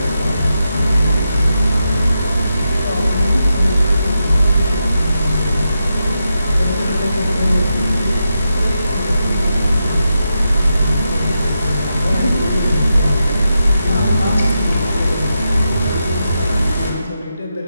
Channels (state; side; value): inverted; both; correlation -0.86